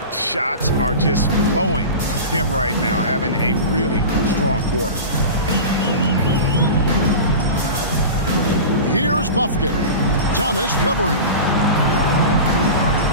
Shots are just flowing him right now, having a really strong quarter. Here's Buffkin. Thomas covering.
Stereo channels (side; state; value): both; inverted; correlation -0.30